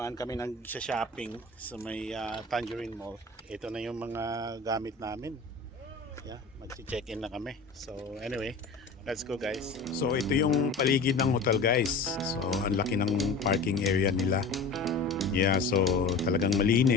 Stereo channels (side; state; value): right; quieter; 3.9 dB